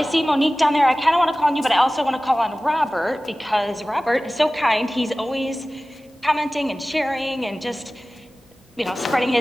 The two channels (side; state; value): both; normal; correlation 0.97